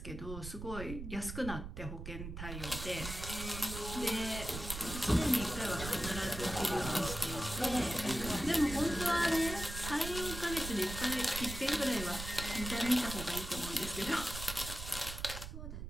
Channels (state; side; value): noise; right; rumble, 8 dB below the sound